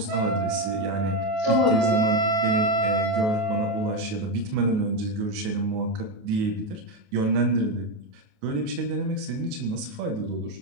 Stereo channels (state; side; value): late; left; 28 ms